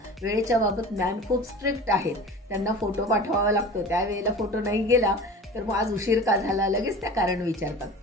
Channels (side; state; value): both; normal; correlation 0.38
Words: वेळेच्या बाबत मॅम खूप स्ट्रिक्ट आहेत. त्यांना फोटो पाठवावा लागतो, त्यावेळेला फोटो नाही गेला तर मग आज उशीर का झाला लगेच त्या कारण विचारतात.